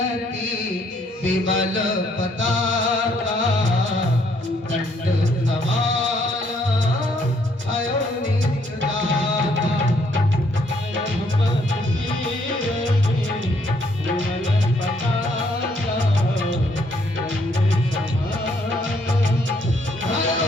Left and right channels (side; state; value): both; normal; correlation 0.69